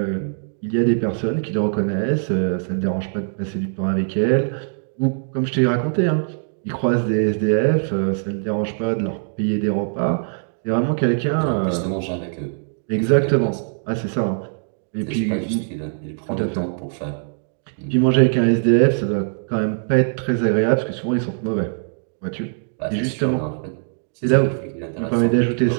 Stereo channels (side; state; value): left; silent; digital silence